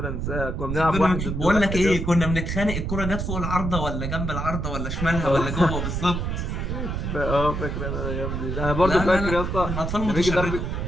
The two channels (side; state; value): right; noise; rumble, 3 dB below the sound